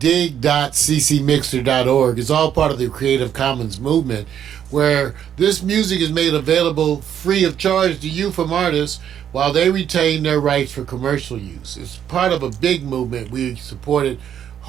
It's all part of the Creative Commons movement, where this music is made available free of charge to you from artists while they retain their rights for commercial use. It's part of a big movement. We support it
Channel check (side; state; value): left; quieter; 9.4 dB